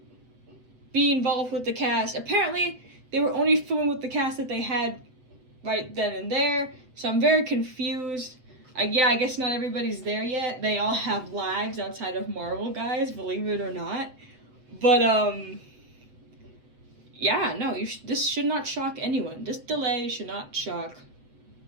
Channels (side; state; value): left; late; 7.7 ms